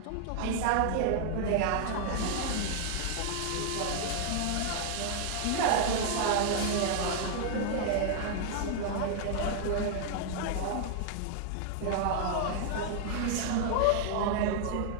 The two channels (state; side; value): different; both; correlation 0.00